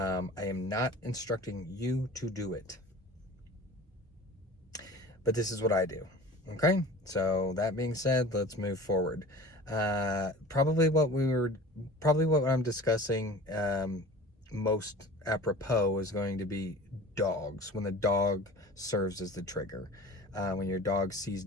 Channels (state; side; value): normal; both; correlation 0.40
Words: am not instructing you to do it, but this is what I do. Okay, so that being said, let's move forward. Probably what I'm discussing most apropos is going to be dogs, when the dog serves as the trigger, when your dog sees